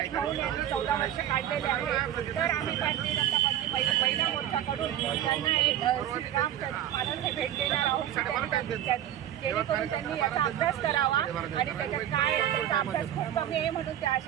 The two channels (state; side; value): quieter; left; 11.3 dB